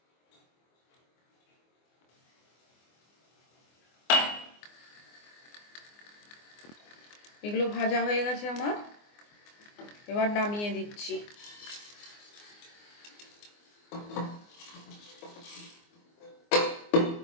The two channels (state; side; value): late; right; 24 ms